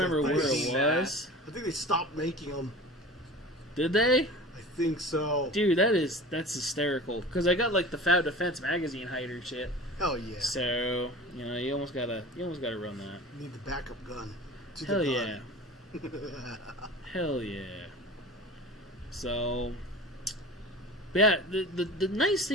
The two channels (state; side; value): normal; both; correlation 0.37